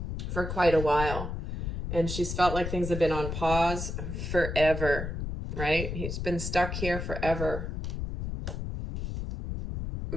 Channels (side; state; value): left; noise; rumble, 4 dB below the sound